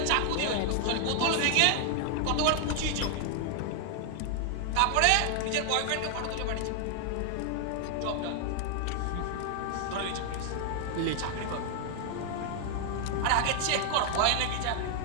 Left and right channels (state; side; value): different; both; correlation 0.00